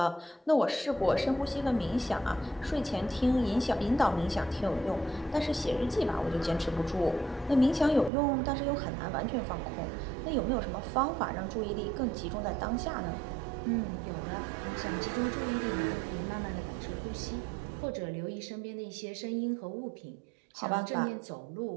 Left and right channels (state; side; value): drops out; left; at 8.1 s